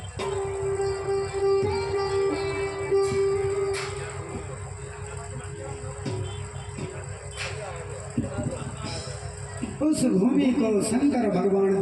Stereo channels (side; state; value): both; identical; correlation 1.00